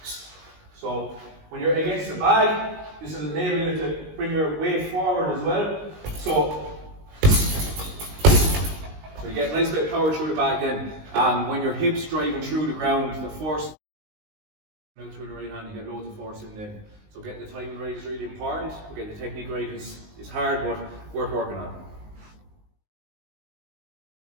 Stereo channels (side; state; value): left; late; 19 ms